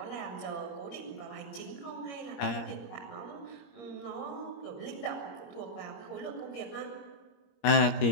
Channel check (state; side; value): late; right; 21 ms